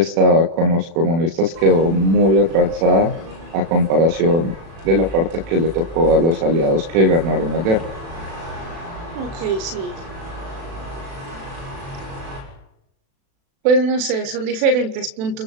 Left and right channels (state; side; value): late; left; 36 ms